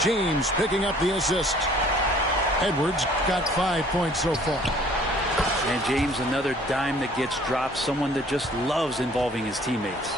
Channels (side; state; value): both; normal; correlation 0.55